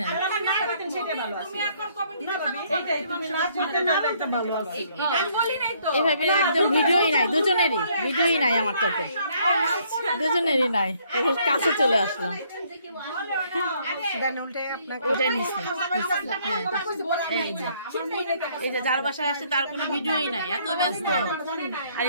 সেটা ভালো আছে তুমি এখন কমেন্ট দিতে পারবে এইটাই তুমি নাচ করতে না একটা ভালো আছে আমি বলি নাই তো এভাবে একদম ভিডিওই নাই দুজনেরই ভিডিওই নাই আমার তো দুজনেরই নাই এখন কাছে চলে আসলাম ওটাই নিচ্ছে এই যে যার বাসায় আসছে তার কোনো ভিডিওই নাই এত ব্যস্ত আর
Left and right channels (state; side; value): inverted; both; correlation -0.65